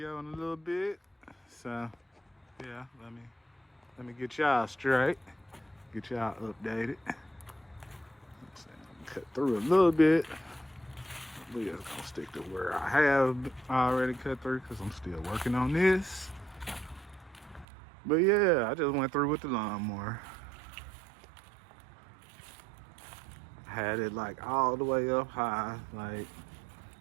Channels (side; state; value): left; drops out; at 17.7 s